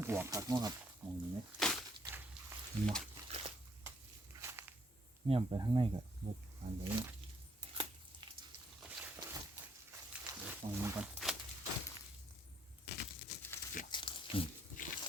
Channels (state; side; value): normal; both; correlation 0.69